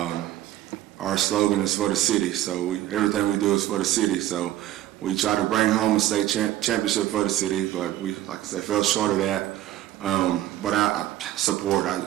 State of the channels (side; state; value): left; quieter; 13.9 dB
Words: Our slogan is for the city, so everything we do is for the city. So we try to bring home a state championship for the city, but we, like I said, fell short of that. But I support.